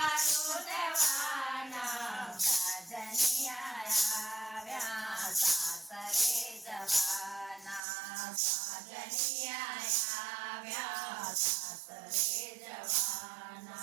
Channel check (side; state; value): left; drops out; at 7.8 s